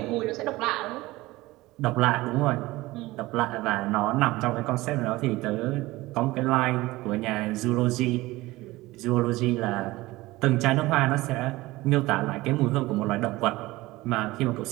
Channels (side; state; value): left; quieter; 19.3 dB